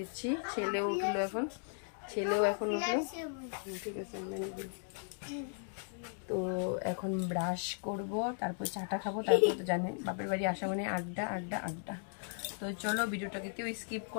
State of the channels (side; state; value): right; silent; 54 dB below the other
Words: ছেলেও উঠলো এখন, ছেলেও এখন উঠলো। ঠিক আছে, তো এখন ব্রাশ করব, তারপর চাটা খাবো, তারপর তো জানেন বাপের বাড়ি আসা মানে আড্ডা আড্ডা আড্ডা। তো চলো ভিডিওটাকে কেউ স্কিপ